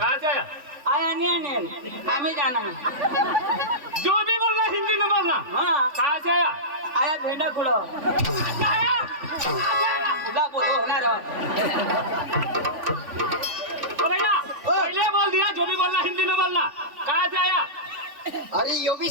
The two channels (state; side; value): late; left; 3.5 ms